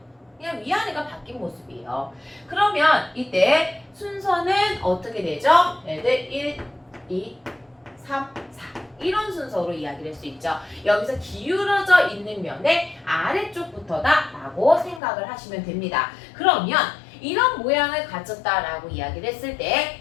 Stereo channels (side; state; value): right; drops out; at 15.0 s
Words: 그냥 위아래가 바뀐 모습이에요. 그러면 이때 순서는 어떻게 되죠? 얘들 1, 2, 3, 4 이런 순서로 이야기를 할 수 있죠. 여기서 기울어져 있는 면의 아래쪽부터다 라고 생각을 하시면 됩니다. 그러면 이런 모양을 가졌다라고 이야기를 했을